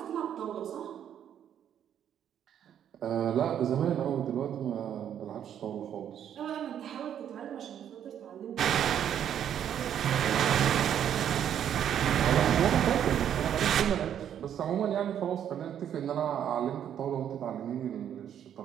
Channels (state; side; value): quieter; left; 9.6 dB